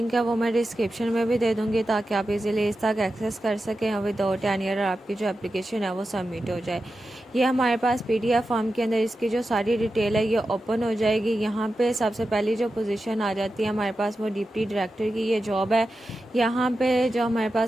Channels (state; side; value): normal; both; correlation 0.91